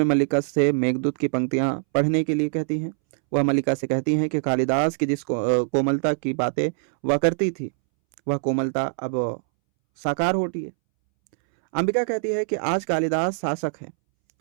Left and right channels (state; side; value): silent; left; 63 dB below the other